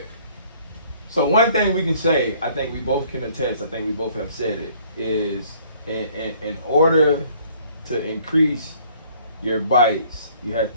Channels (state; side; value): inverted; both; correlation -0.59